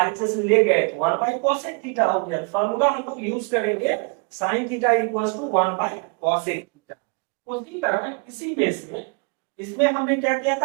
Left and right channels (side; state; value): left; quieter; 36.3 dB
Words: में ले गए, 1 बाई कॉसेक थीटा हो गया। फॉर्मूला हम लोग यूज करेंगे sine theta equals to 1 by cosec theta. उसी तरह इसी बेस में इसमें हमने क्या किया